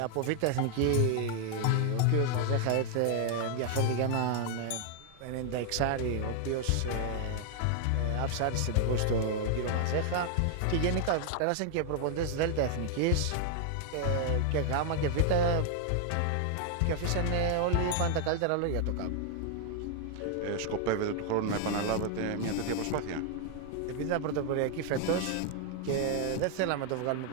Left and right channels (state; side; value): different; both; correlation 0.00